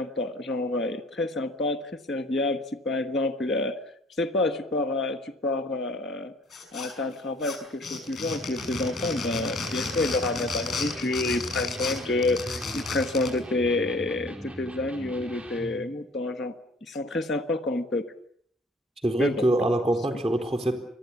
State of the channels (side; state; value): both; normal; correlation 0.54